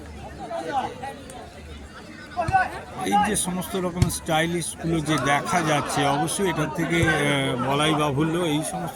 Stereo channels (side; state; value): both; identical; correlation 1.00